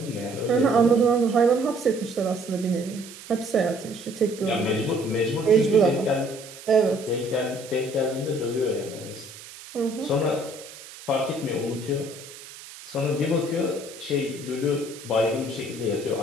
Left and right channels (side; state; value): right; noise; hiss, 16 dB below the sound